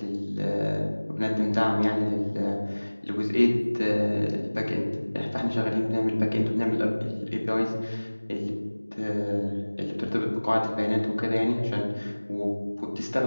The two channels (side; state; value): both; inverted; correlation -1.00